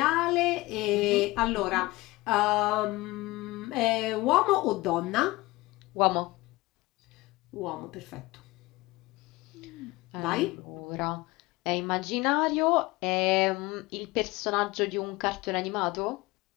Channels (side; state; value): right; quieter; 20.7 dB